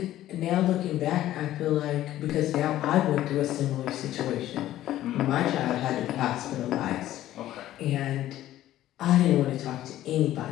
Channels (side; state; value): right; quieter; 13.7 dB